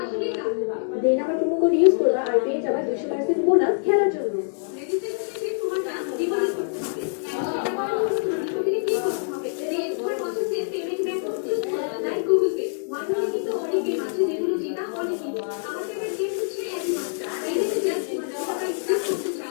আসলেই কাজ। দেন আমার প্রোমো কোড ইউজ করবা আর পেয়ে যাবা 200% বোনাস খেলার জন্য। রেজিস্ট্রেশন শেষে তোমারটা ডিপোজিট করতে হবে। এন্ড সেটা করার জন্য তোমার ডিপোজিটে ক্লিক করতে হবে। দেন তোমার পছন্দের পেমেন্ট মেথড চুজ করবা, like Google pay. One million কিন্তু অনেক গেম আছে যেগুলো জেতা অনেক ইজি। আমার ফেভারিট গেম হচ্ছে অ্যানিমাস্টার। এখানে জাস্ট তোমার যত টাকা ইনভেস্ট করতে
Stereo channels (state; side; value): silent; right; 62 dB below the other